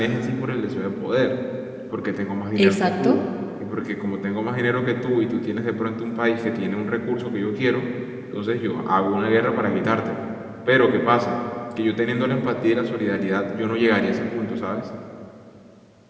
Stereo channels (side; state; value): both; identical; correlation 1.00